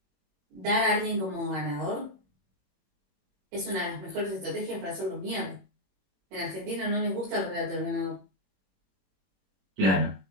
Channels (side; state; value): left; late; 21 ms